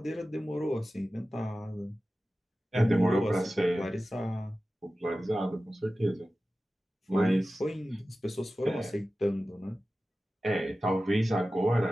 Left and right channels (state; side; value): normal; both; correlation 0.95